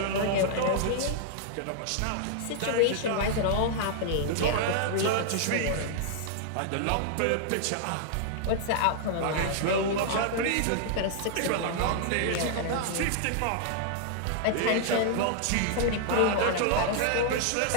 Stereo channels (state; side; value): different; both; correlation -0.01